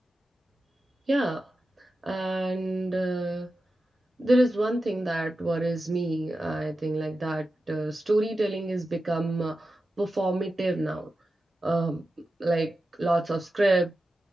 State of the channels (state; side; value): normal; both; correlation 0.92